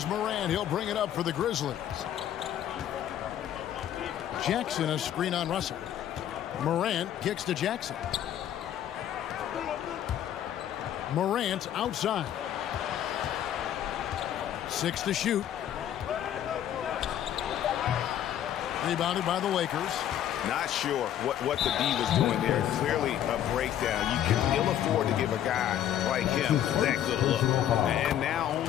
Morant. He'll bring it up for the Grizzlies. Jackson, a screen on Russell. Morant kicks to Jackson. Morant outside. 6 to shoot. Rebounded by the Lakers. Not sure what the D was doing there. Clearly a breakdown. You can ill afford to give a guy like him that good look. And now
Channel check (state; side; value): quieter; right; 10.9 dB